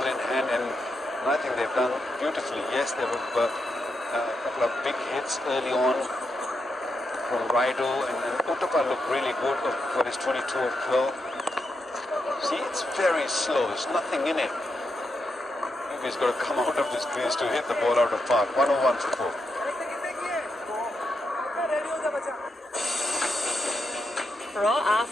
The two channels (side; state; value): both; normal; correlation 0.84